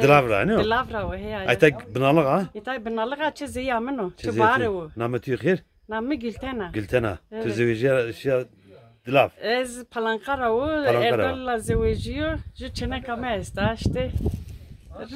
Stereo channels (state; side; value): identical; both; correlation 1.00